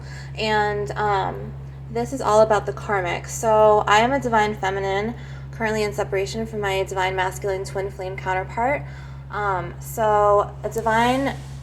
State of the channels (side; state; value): both; identical; correlation 1.00